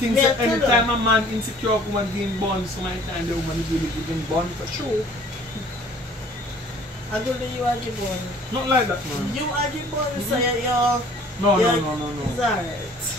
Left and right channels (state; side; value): normal; both; correlation 0.53